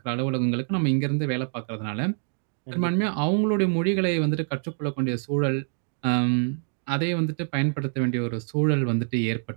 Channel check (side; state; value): left; silent; 58 dB below the other